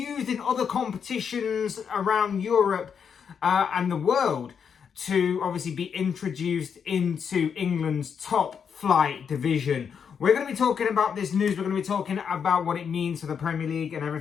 in other competitions around Europe and the world to obviously be introduced into England's top flight division. We're going to be talking about this news. We're going to be talking about what it means for the Premier League and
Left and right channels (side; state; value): right; quieter; 7.0 dB